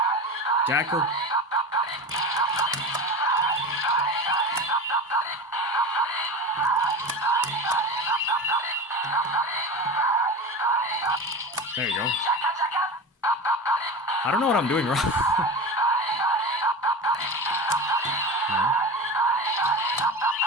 Jackal. There you go. I don't know what I'm doing wrong. No.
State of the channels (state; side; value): normal; both; correlation 0.28